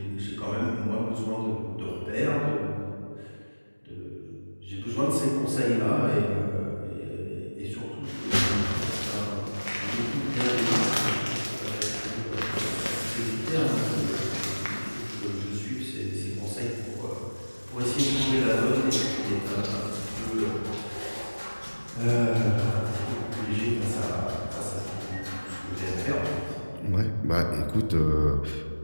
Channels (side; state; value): both; inverted; correlation -1.00